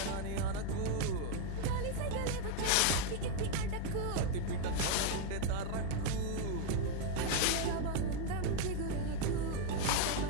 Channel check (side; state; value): both; different; correlation 0.00